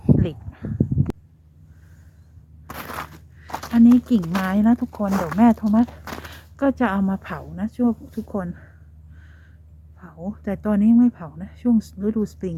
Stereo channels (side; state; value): both; identical; correlation 1.00